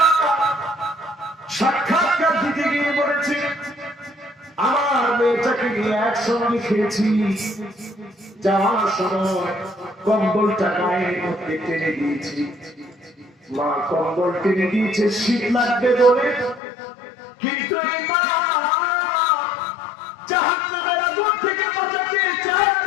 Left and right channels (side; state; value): right; drops out; at 16.6 s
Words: সাক্ষাৎকার দিতে গিয়ে বলেছে, আমার মেয়েটাকে নিয়ে একসঙ্গে খেয়েছি, যাওয়ার সময় কম্বলটা গায়ের মধ্যে টেনে দিয়েছি। মা কম্বল টেনে দিয়েছে শীত লাগবে বলে, কিন্তু জাহান্নামের আগুন থেকে বাঁচাতে চার